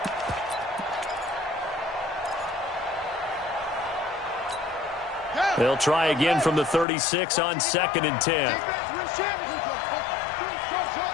They'll try again from the 36 on 2nd and 10.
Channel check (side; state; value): right; drops out; at 6.9 s